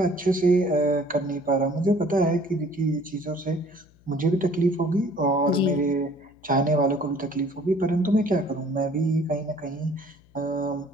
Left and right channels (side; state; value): left; noise; hum, 29 dB below the sound